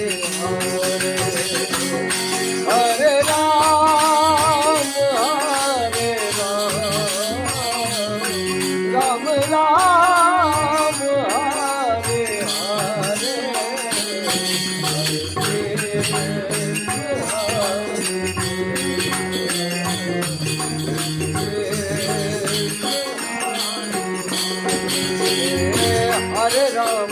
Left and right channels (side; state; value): both; identical; correlation 1.00